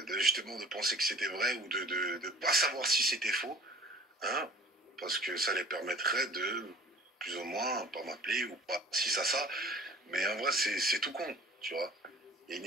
justement de penser que c'était vrai ou de pas savoir si c'était faux, hein, parce que ça les permettrait de plus ou moins pas m'appeler ou pas si ça, mais en vrai c'est tout con, tu vois. Il y a une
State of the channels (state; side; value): normal; both; correlation 0.48